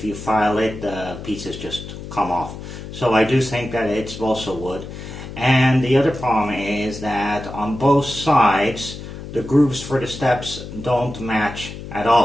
you file it, the pieces just come off. So I do think that it's balsa wood. And the other problem is that on both sides, the grooves for the steps don't match at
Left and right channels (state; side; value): noise; left; hum, 11 dB below the sound